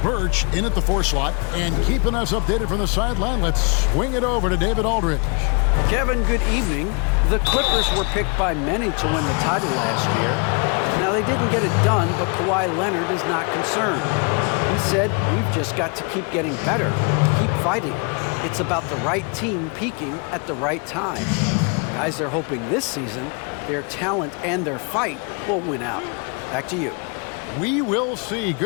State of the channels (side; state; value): right; quieter; 35.4 dB